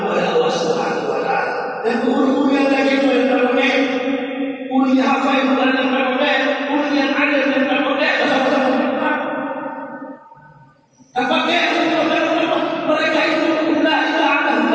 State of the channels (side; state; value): both; identical; correlation 1.00